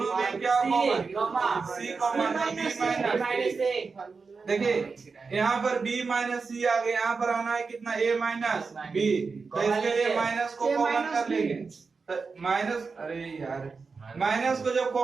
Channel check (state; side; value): quieter; left; 4.7 dB